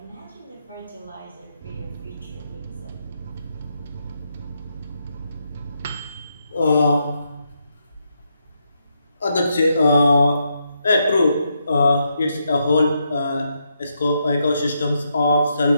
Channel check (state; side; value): inverted; both; correlation -0.80